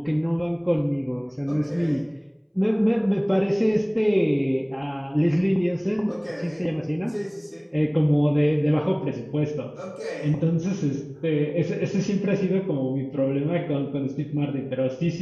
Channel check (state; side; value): identical; both; correlation 1.00